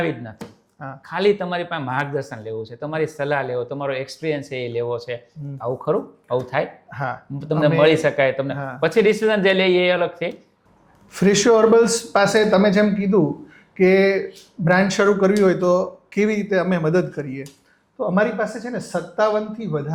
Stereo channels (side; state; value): both; identical; correlation 1.00